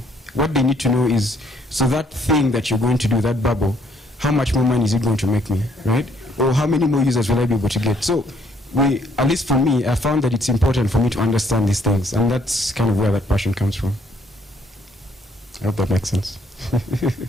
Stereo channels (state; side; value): normal; both; correlation 0.66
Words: What they need to know is, so that thing that you're going to do, that bubble, how much more money is it going to make me, right? Or how many more users will I be able to get? So at least for me, I found that it's important for me to understand these things, and that's kind of where that passion comes from. I hope that makes sense. Just an